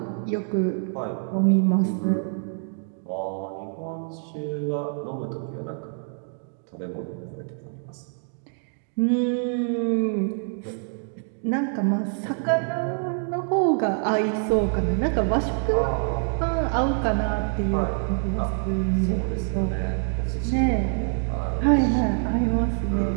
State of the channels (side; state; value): left; silent; 55 dB below the other